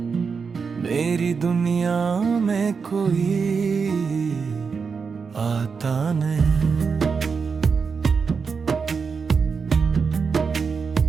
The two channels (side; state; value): left; quieter; 5.5 dB